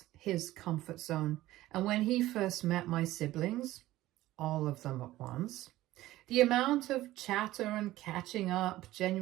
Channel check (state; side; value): quieter; left; 16.0 dB